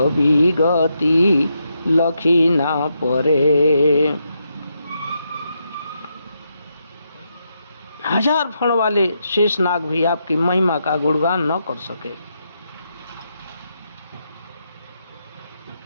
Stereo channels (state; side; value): inverted; both; correlation -0.82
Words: लखी ना परे। हजार फण वाले शेषनाग भी आपकी महिमा का गुणगान न कर सके।